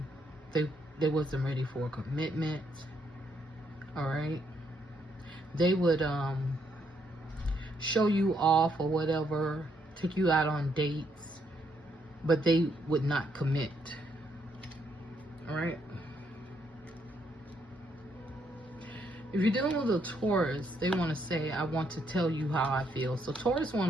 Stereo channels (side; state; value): both; normal; correlation 0.74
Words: they wasn't ready for a commitment. All right. They would show you off or whatever, take you out on dates, but they would not commit. All right. If you're dealing with a Taurus, they want to say, I want to tell you how I feel. So Taurus